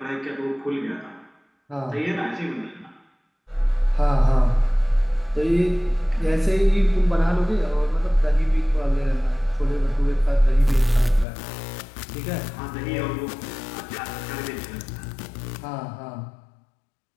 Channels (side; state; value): right; drops out; at 11.2 s